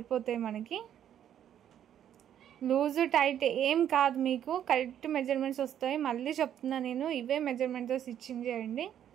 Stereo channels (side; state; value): left; quieter; 10.1 dB